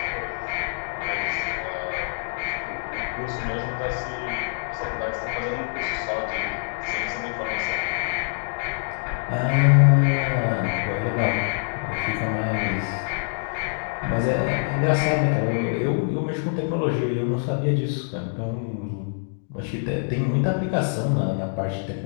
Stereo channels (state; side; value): silent; right; digital silence